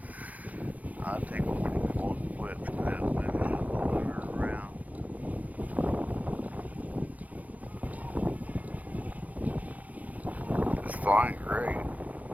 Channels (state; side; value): late; left; 0.076 ms